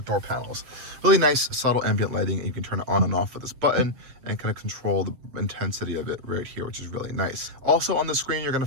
door panels. Really nice subtle ambient lighting, and you can turn it on and off with this button and kind of control the intensity of it right here, which is really nice. Also on the screen, you're going to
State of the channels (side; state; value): left; late; 7.7 ms